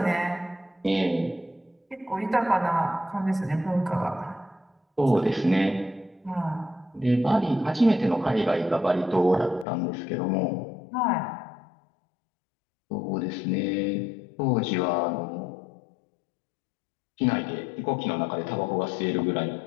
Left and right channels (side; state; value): right; drops out; at 9.7 s